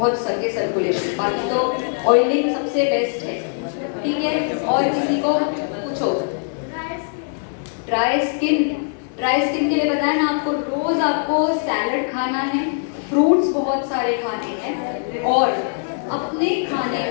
सके सर्कुलेशन। बाकी तो ऑयलिंग सबसे बेस्ट है। ठीक है। और किसी को पूछो। ड्राई स्किन के लिए बताया ना आपको, रोज आपको सैलड खाना है, फ्रूट्स बहुत सारे खाने हैं, और अपने खाने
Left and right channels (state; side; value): silent; right; digital silence